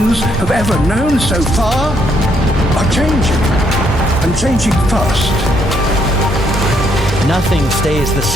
have ever known so far are changing, and changing fast. Nothing stays the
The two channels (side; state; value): both; normal; correlation 0.72